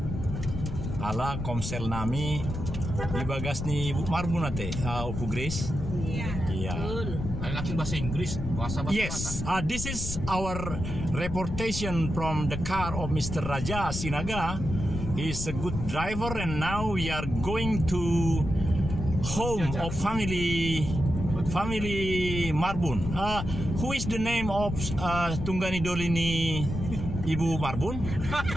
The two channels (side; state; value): left; noise; rumble, 5 dB below the sound